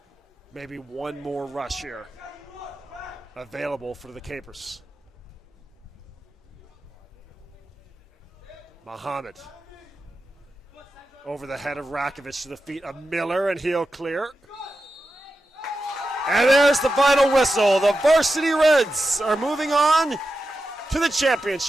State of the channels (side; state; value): both; normal; correlation 0.91